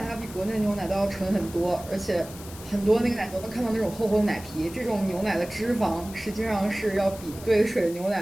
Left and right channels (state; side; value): noise; left; hiss, 16 dB below the sound